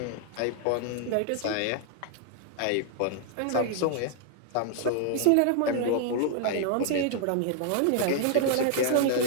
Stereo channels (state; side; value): different; both; correlation 0.00